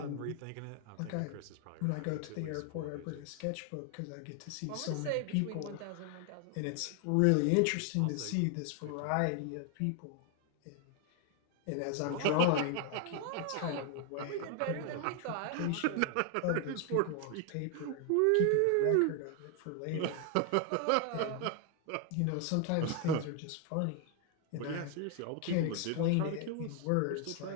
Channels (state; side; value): different; both; correlation 0.01